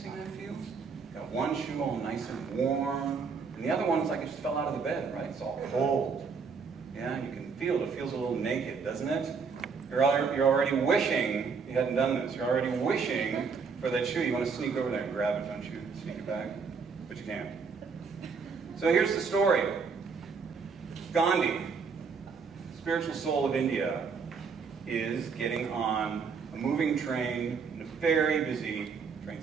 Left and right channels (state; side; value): quieter; left; 5.4 dB